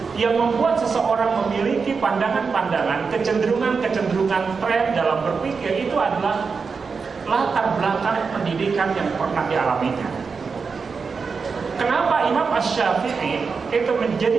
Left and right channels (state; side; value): quieter; left; 5.1 dB